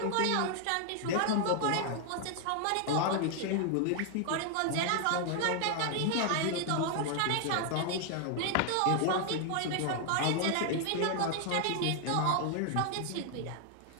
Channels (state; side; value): different; both; correlation 0.00